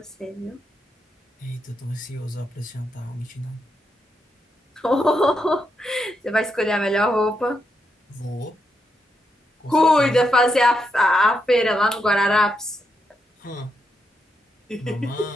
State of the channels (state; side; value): normal; both; correlation 0.82